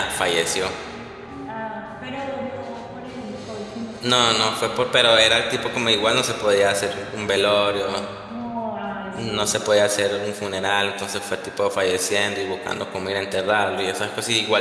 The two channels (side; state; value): both; identical; correlation 1.00